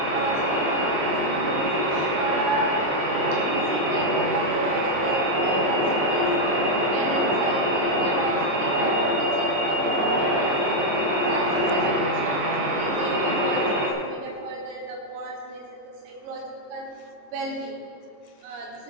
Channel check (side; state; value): left; late; 21 ms